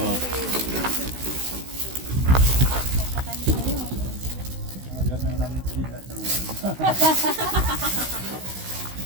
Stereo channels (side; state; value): left; late; 16 ms